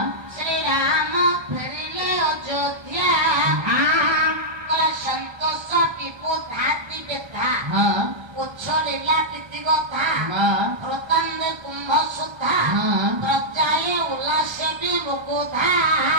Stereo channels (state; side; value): late; left; 1.3 ms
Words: ଶ୍ରୀରାମ ଫେରିଲେ ଅଯୋଧ୍ୟା ସନ୍ତୋଷ ଟିପୁ ଧାତି ବେଧା ଉଚ୍ଛଳିଲା ପ୍ରୀତି କଥା ହୃତାନ୍ଦେ କୁମ୍ଭ ସୁଧା ପ୍ରଜାଏ ଉଲ୍ଲାସେ ବି ମୁକୁଧା।